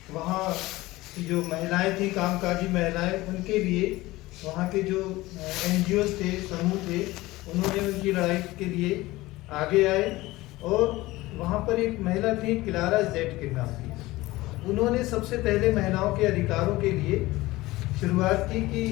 वहाँ जो महिलाएं थी, कामकाजी महिलाएं, उनके लिए वहाँ के जो NGOs थे, समूह थे, उन्होंने उनकी लड़ाई के लिए आगे आए। और वहाँ पर एक महिला थी क्लारा जेट के नाम की, उन्होंने सबसे पहले महिलाओं के अधिकारों के लिए शुरुआत की कि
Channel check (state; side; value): quieter; right; 19.1 dB